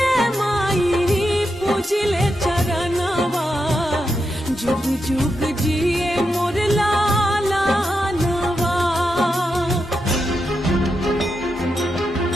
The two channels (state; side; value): normal; both; correlation 0.85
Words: माई पूजिले चरणवा जुग जुग जिए मोर